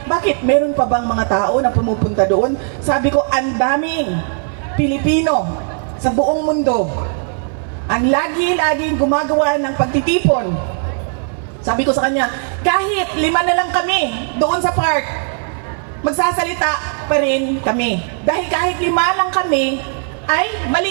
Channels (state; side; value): silent; left; 57 dB below the other